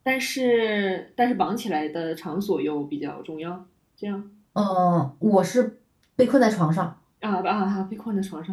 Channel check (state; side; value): identical; both; correlation 1.00